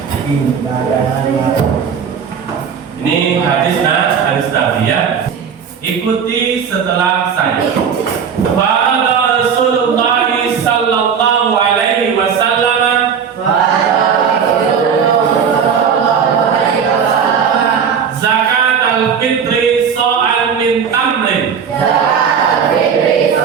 Ini hadis Nabi ya. Ikuti setelah saya. Qala Rasulullah sallallahu alaihi wasallam zakat al-fitri sa'an min tamrin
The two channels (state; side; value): quieter; left; 7.0 dB